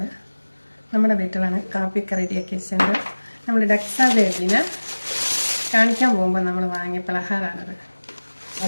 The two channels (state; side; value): inverted; both; correlation -1.00